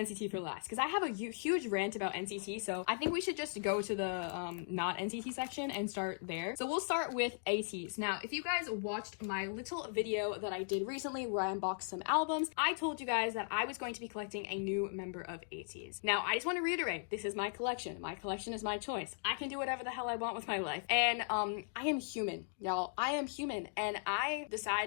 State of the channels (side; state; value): right; silent; digital silence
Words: for last because I have a huge rant about NCT, so I think we should just go to the not NCT section and start there. So we'll start with ATEEZ. Now, if you guys watched my little video that I did recently where I unboxed some albums, I told you guys that I was going to be collecting a new member of ATEEZ. Now, I just want to reiterate, this is my collection. My collection is my choice. I can do whatever the hell I want with my life. And I am human, y'all. I am human, and I